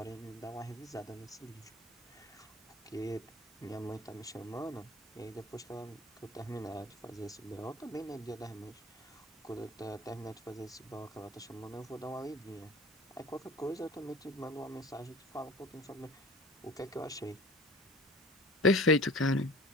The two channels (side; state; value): both; normal; correlation 0.44